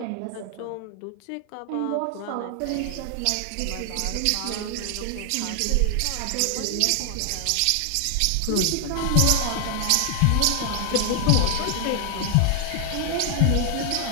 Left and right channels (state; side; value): different; both; correlation 0.00